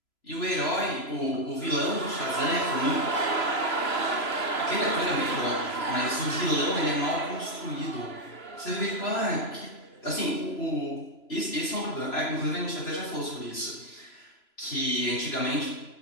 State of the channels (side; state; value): right; late; 3.0 ms